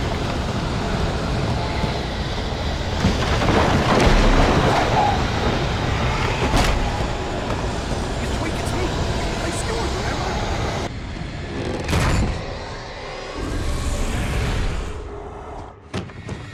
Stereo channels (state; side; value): identical; both; correlation 1.00